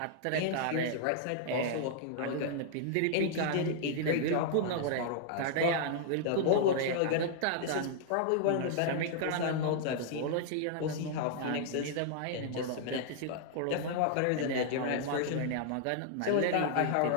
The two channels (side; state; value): both; different; correlation -0.01